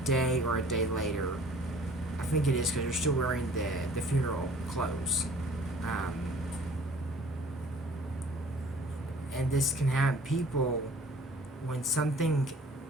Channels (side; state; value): both; normal; correlation 0.51